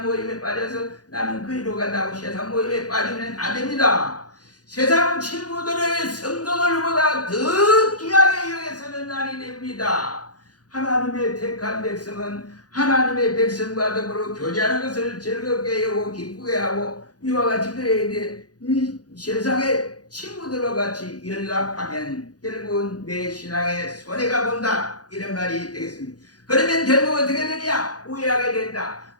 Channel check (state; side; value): late; right; 0.68 ms